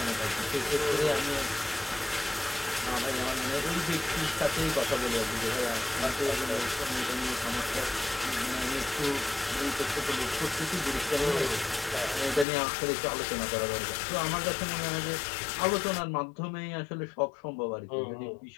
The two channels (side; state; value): right; drops out; at 12.5 s